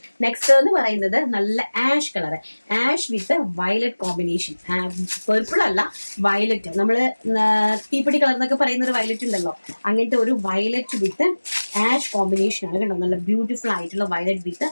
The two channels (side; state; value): both; inverted; correlation -1.00